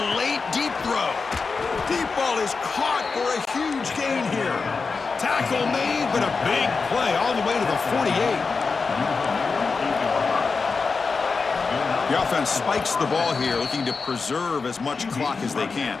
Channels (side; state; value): right; quieter; 4.6 dB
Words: late deep throw. Deep ball is caught for a huge gain here. Tackle made, but a big play all the way to the 48. The offense spikes the ball here, looking to preserve as much clock as they can.